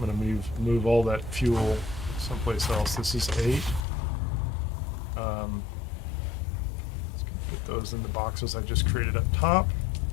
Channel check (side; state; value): right; drops out; at 3.9 s